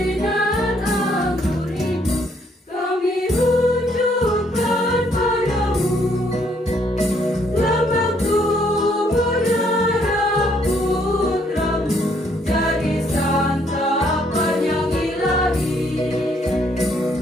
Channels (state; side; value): normal; both; correlation 0.68